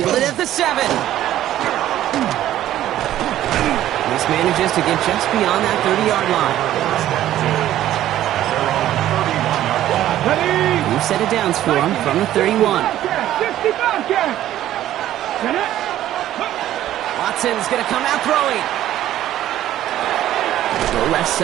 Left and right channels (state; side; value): quieter; left; 12.9 dB